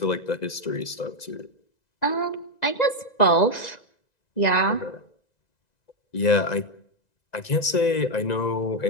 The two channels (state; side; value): late; right; 2.0 ms